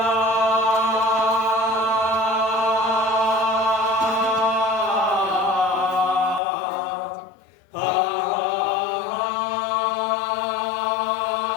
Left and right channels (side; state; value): right; drops out; at 6.4 s